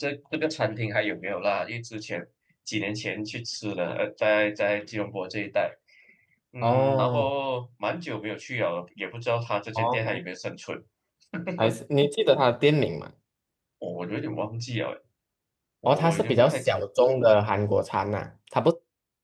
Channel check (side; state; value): both; identical; correlation 1.00